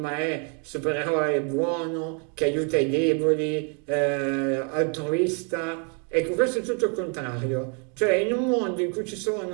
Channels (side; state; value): left; quieter; 38.6 dB